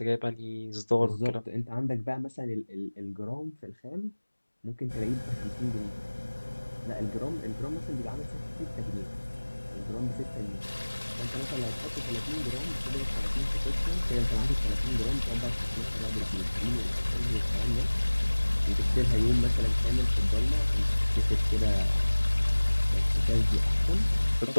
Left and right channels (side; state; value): both; inverted; correlation -1.00